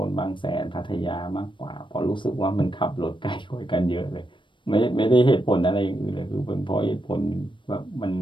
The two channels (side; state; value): right; late; 0.24 ms